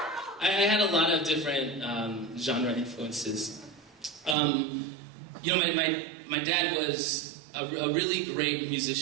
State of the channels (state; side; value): drops out; left; at 4.4 s